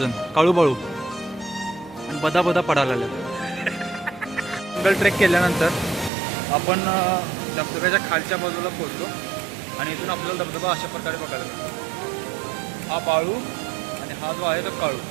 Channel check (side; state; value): left; drops out; at 6.1 s